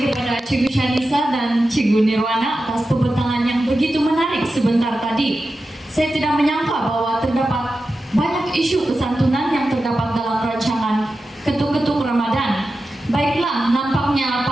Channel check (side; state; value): both; normal; correlation 0.92